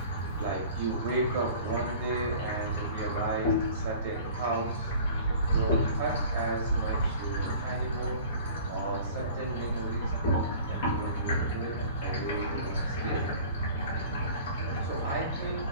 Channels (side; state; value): both; inverted; correlation -0.44